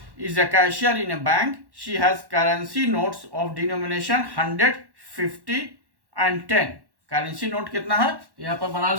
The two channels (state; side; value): late; left; 1.1 ms